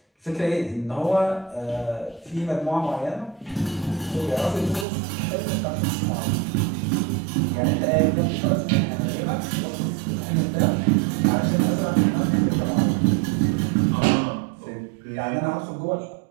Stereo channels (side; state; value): left; drops out; at 4.9 s